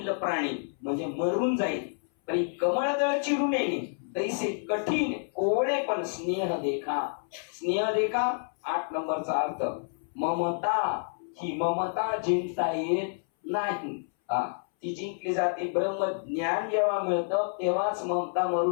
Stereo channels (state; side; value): silent; right; 59 dB below the other